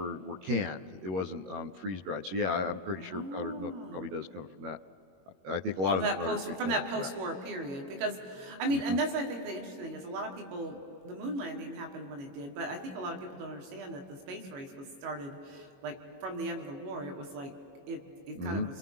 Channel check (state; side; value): late; left; 21 ms